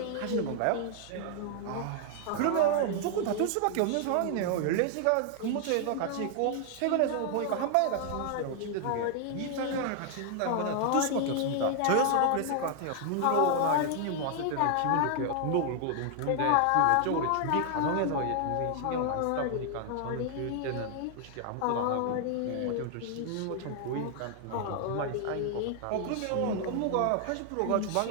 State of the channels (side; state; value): both; different; correlation 0.00